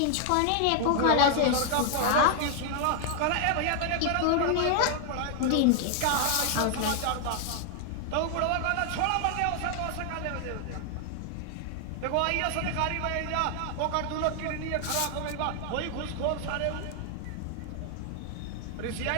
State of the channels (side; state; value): both; different; correlation 0.00